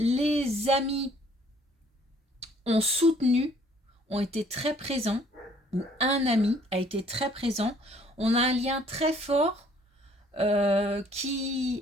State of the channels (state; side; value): normal; both; correlation 0.60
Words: amis ont soutenu, ont été très présents, ou un ami a été très présent. On a un lien très fort qui